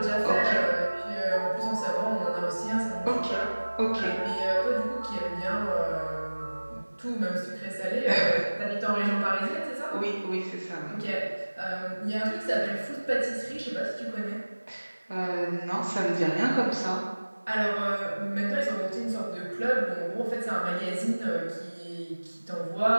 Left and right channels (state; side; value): inverted; both; correlation -1.00